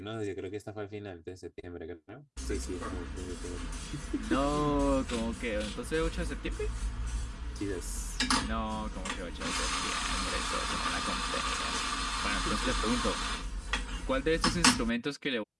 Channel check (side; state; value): both; identical; correlation 1.00